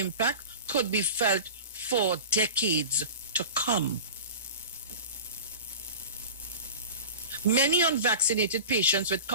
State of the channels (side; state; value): both; inverted; correlation -0.35